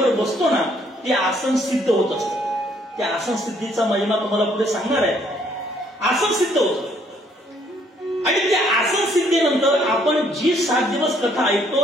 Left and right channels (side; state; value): both; normal; correlation 0.66